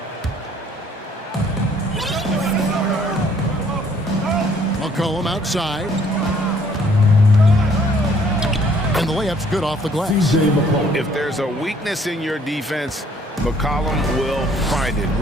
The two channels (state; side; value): normal; both; correlation 0.62